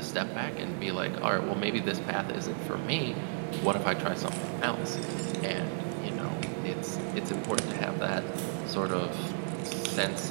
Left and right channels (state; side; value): silent; left; digital silence